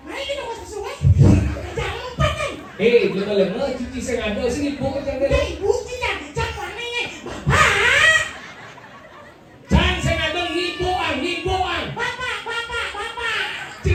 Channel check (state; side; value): identical; both; correlation 1.00